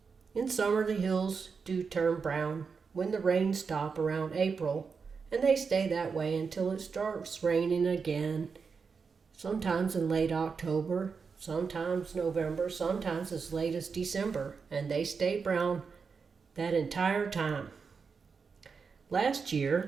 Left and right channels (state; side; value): quieter; left; 5.4 dB